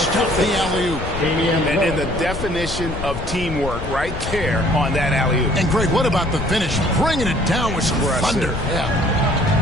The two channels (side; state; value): left; noise; rumble, 7 dB below the sound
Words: the alley-oop. And the definition of teamwork right there on that alley-oop. And Greg, what about the finish? Bringing it down with some thunder. Yeah.